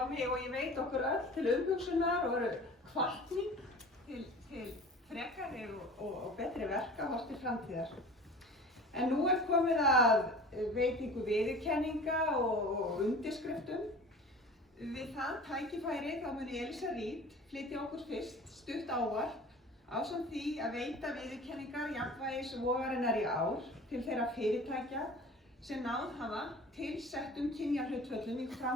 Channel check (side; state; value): both; normal; correlation 0.41